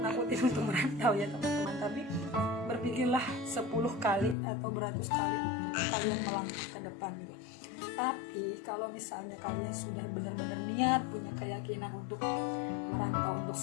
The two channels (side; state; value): right; drops out; at 4.4 s